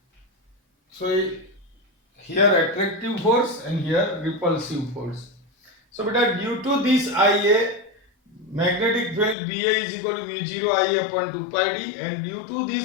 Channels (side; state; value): right; drops out; at 9.3 s